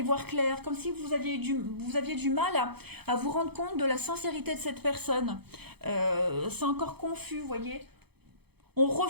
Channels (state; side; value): late; left; 0.97 ms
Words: voir clair, comme si vous aviez du mal à vous rendre compte de la sincérité de cette personne. C'est encore confus, vous voyez. On